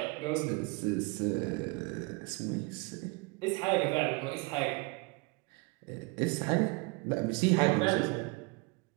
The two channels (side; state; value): left; quieter; 27.1 dB